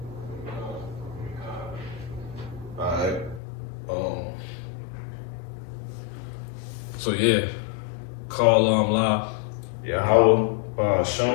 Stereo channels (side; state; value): right; drops out; at 3.4 s